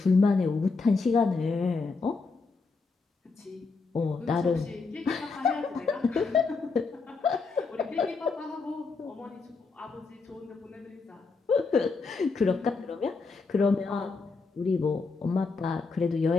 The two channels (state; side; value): quieter; right; 4.3 dB